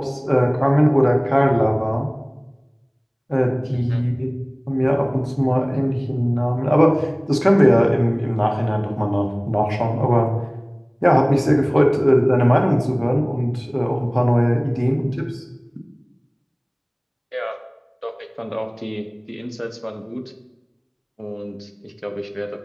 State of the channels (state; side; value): identical; both; correlation 1.00